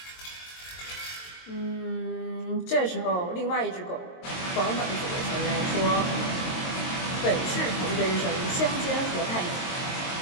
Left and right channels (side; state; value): right; late; 22 ms